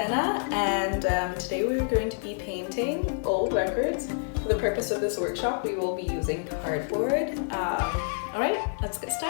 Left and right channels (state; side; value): silent; right; digital silence